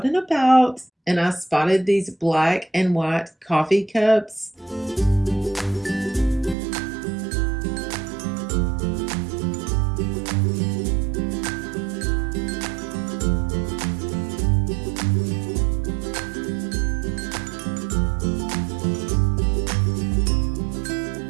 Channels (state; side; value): drops out; left; at 6.6 s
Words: and about and I spotted these black and white coffee cups.